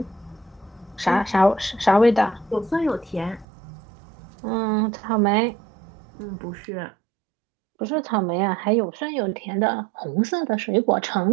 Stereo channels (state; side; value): drops out; left; at 3.5 s